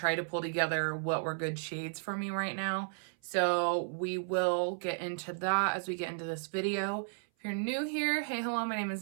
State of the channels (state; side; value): silent; left; 55 dB below the other